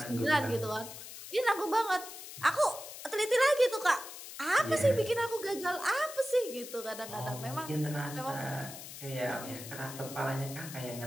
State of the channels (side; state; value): left; noise; hiss, 12 dB below the sound